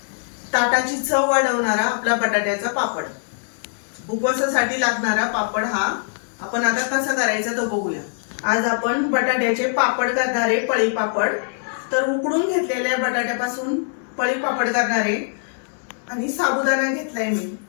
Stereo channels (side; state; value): right; silent; digital silence